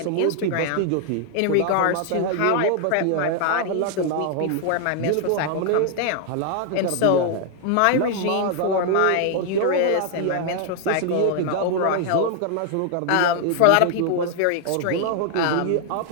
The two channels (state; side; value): different; both; correlation 0.00